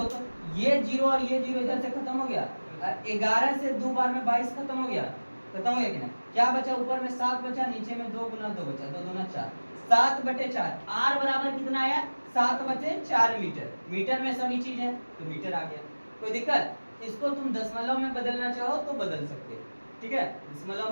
तो ये जीरो और ये जीरो इधर से खत्म हो गया, 11 से 2 बार में 22 खत्म हो गया, खत्म हो गया कि नहीं। क्या बचा, ऊपर में 7 बचा, नीचे में 2 गुना 2 बचा, 2 दूना 4, 7/4। आर बराबर कितना आया, 7/4 मीटर। मीटर में सभी चीज है तो मीटर आ गया, कोई दिक्कत। इसको तुम दशमलव में बदलना चाहो तो बदल सकते, ठीक है, दशमलव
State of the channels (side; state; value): both; inverted; correlation -1.00